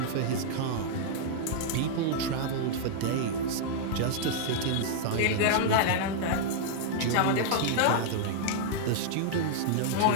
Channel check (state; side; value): different; both; correlation -0.01